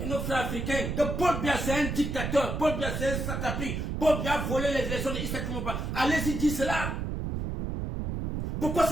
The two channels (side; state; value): right; noise; rumble, 2 dB below the sound